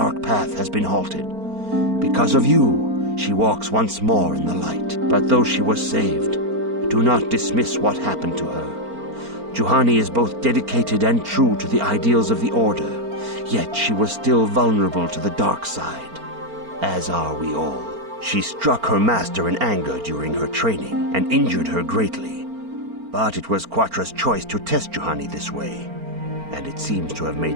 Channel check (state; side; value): late; left; 4.4 ms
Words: path has been halted. Because of you, she walks once more in the light. But though she was saved, do not dismiss what happened to her. Juhani is both dedicated and true to the ideals of the Order, yet she was still vulnerable to the dark side, as are we all. She struck her master in anger during her training and injured her greatly. But it was Quatra's choice to test Juhani this way, and it seems to have